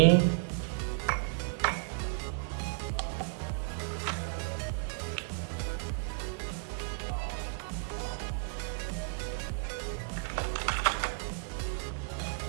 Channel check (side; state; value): left; silent; 55 dB below the other